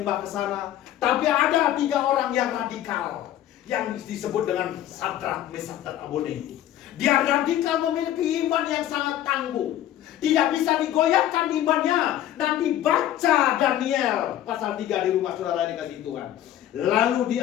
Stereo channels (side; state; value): right; quieter; 12.3 dB